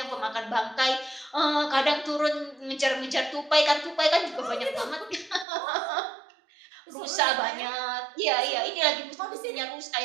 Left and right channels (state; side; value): drops out; left; at 5.5 s